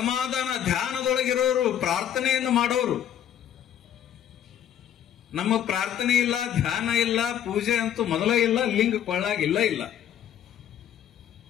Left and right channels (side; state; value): right; quieter; 10.3 dB